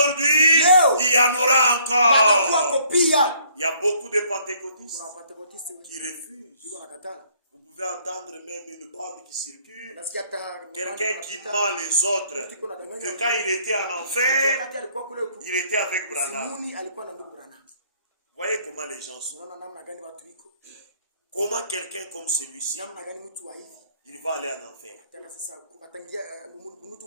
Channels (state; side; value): inverted; both; correlation -0.62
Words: il y en aura encore. Il y a beaucoup de pentecôtistes qui refusent. Vous pouvez entendre même une bande qui circule, quelqu'un qui ment les autres, que quand il était en enfer, il était avec Branham. Voyez comment les gens sont. Comment quelqu'un comme celui-ci, il va aller en enfer.